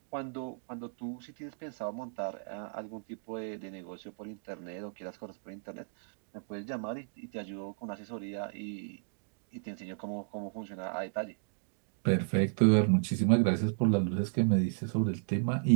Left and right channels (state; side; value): silent; left; digital silence